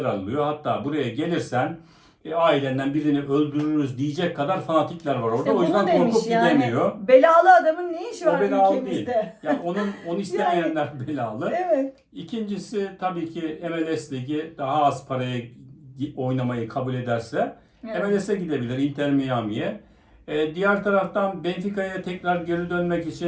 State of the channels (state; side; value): identical; both; correlation 1.00